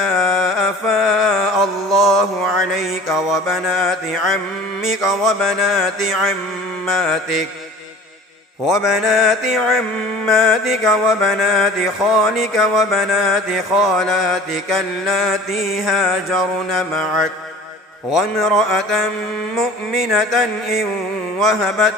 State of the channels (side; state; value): both; normal; correlation 0.44